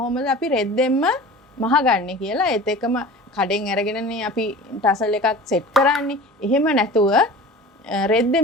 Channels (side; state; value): both; normal; correlation 0.39